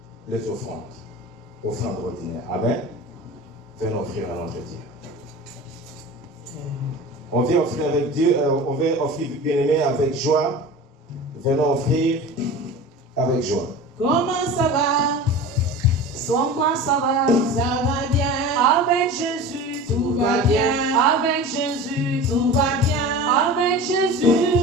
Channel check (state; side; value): normal; both; correlation 0.34